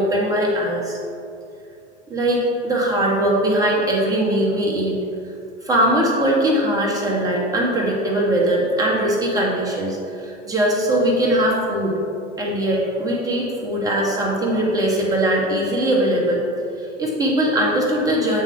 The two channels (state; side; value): normal; both; correlation 0.30